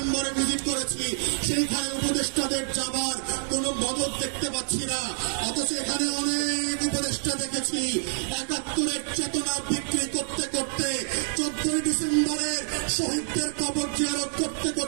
ভিজিট করেছি, সেইখানে উপদেষ্টাদের যাবার কোনো মদত দেখতে পাচ্ছি না। অথচ এখানে অনেক উপদেষ্টা দেখেছি ৭১-এর চেতনা বিক্রি করতে করতে 14ই ডিসেম্বরের শহীদদের কবর জিয়ারত করতে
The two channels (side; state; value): left; silent; digital silence